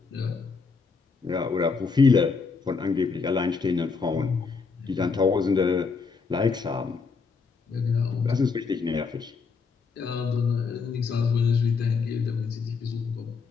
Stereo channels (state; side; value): quieter; right; 4.9 dB